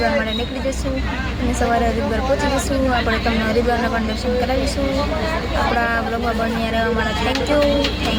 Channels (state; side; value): identical; both; correlation 1.00